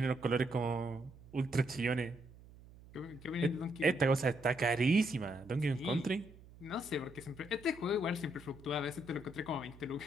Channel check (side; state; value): right; noise; hum, 21 dB below the sound